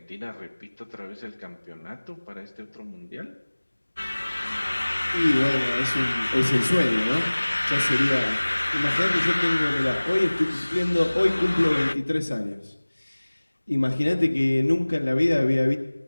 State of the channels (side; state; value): both; inverted; correlation -1.00